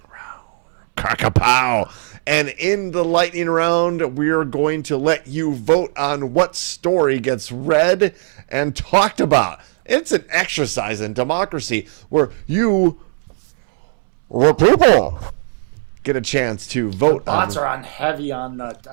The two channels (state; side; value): silent; left; 67 dB below the other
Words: round. Crack-a-pow! And in the lightning round, we are going to let you vote on what story gets read and talked about. It's an exercise in democracy where you, the people, get a chance to vote. The bots are on heavy on the.